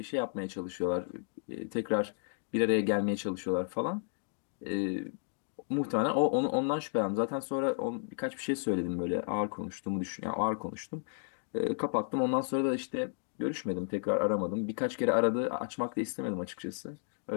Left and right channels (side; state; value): right; silent; 56 dB below the other